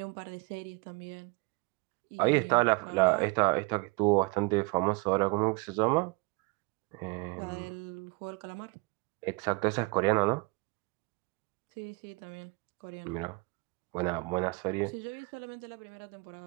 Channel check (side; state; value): left; quieter; 28.0 dB